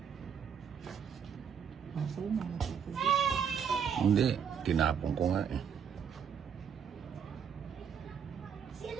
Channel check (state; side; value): quieter; left; 7.5 dB